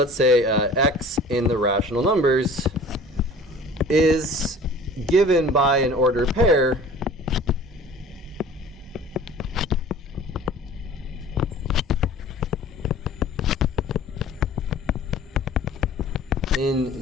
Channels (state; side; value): normal; both; correlation 0.45